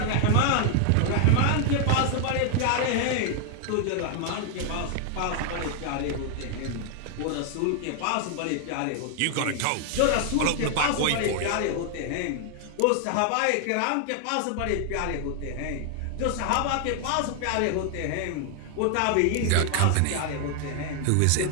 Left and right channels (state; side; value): different; both; correlation 0.00